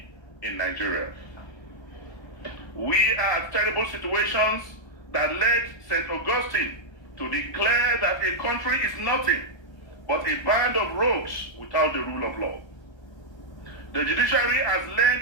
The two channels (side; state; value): right; late; 1.3 ms